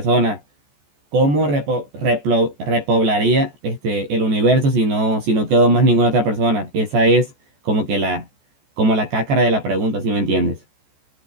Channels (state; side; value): late; left; 14 ms